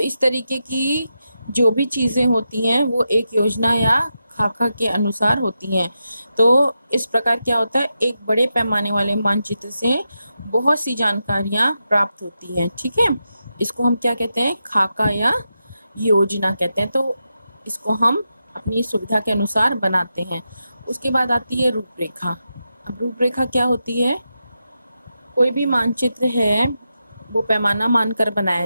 तरीके की जो भी चीज़ें होती हैं वो एक योजना या खाका के अनुसार होती हैं। तो इस प्रकार क्या होता है, एक बड़े पैमाने वाले मानचित्र से बहुत सी जानकारियाँ प्राप्त होती हैं। ठीक है, इसको हम क्या कहते हैं, खाका या योजना कहते हैं। तो इसको हम अपनी सुविधा के अनुसार बनाते हैं। उसके बाद आती है रूपरेखा। अब रूपरेखा क्या होती है, कोई भी मानचित्र है वो पैमाना मानकर बनाया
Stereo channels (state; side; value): inverted; both; correlation -0.88